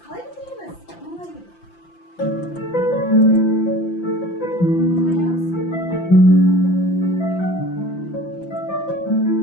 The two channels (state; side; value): late; right; 5.9 ms